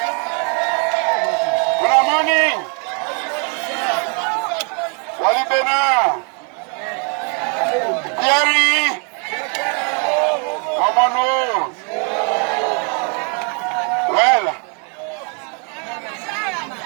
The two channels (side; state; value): left; quieter; 38.3 dB